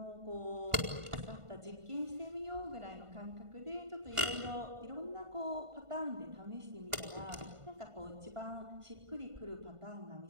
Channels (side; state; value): left; late; 1.5 ms